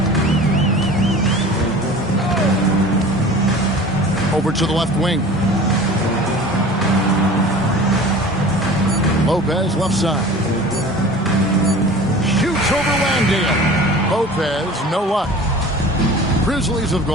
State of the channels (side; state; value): both; normal; correlation 0.41